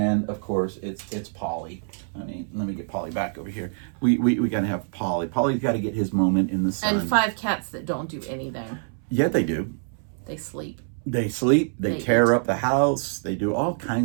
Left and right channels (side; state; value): left; silent; 61 dB below the other